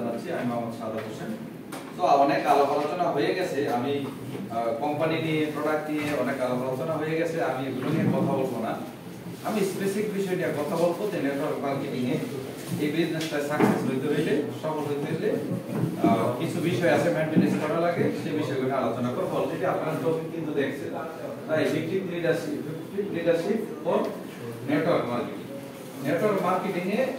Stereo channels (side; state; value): both; identical; correlation 1.00